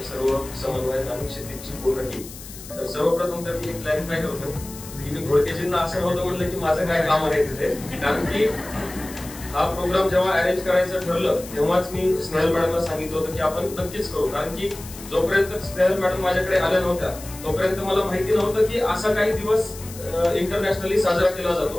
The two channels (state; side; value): noise; left; hiss, 15 dB below the sound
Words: सर्व समन्वयक आणि क्षितिजची पूर्ण टीम. तर सर्वप्रथम तर मी एक क्लॅरिफाय करतो की मी घोडकेजींना असं नव्हतं म्हटलं की माझं काय काम आहे तिथे, कारण की हा प्रोग्राम जेव्हा अरेंज करायचं ठरलं तेव्हाच मी स्नेहल मॅडमला सांगितलं होतं की आपण नक्कीच करू. कारण की जोपर्यंत स्नेहल मॅडम माझ्याकडे आल्या नव्हत्या तोपर्यंत मला माहिती नव्हतं की असा काही दिवस इंटरनॅशनली साजरा केला